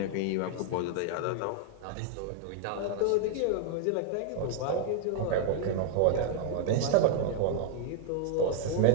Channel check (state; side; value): different; both; correlation 0.00